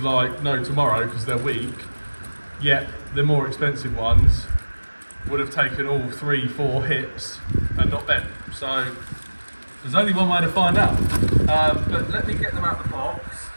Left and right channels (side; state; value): both; inverted; correlation -1.00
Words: like no tomorrow, because they're weak, yet the more expensive ones would have taken all 3-4 hits and not bent. So there's only one way to find out. But let me get them out of the box.